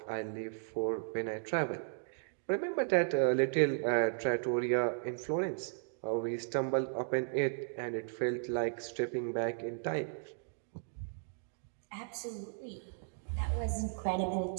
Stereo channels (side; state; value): left; silent; digital silence